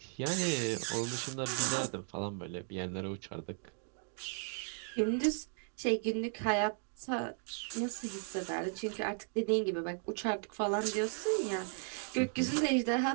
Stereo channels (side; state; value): left; silent; 54 dB below the other